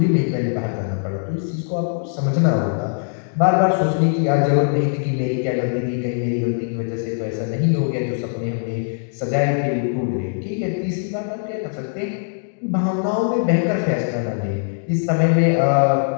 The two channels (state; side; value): silent; right; digital silence